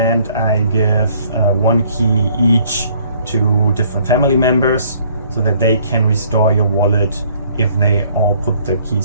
I give 1 key each to different family members so that they can restore your wallet if they all put the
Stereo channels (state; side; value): inverted; both; correlation -0.60